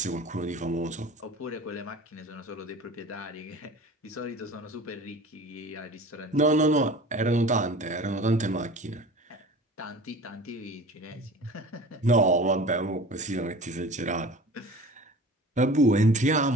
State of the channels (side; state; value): both; normal; correlation 0.40